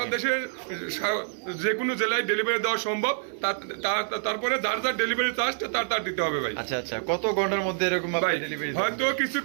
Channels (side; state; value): left; silent; 60 dB below the other